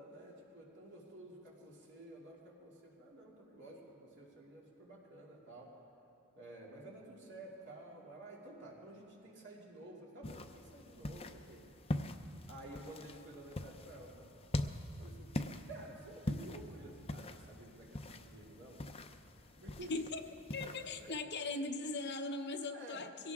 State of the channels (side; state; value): both; normal; correlation 0.51